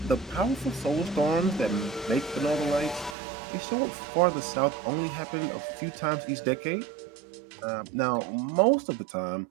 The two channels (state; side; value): drops out; left; at 3.2 s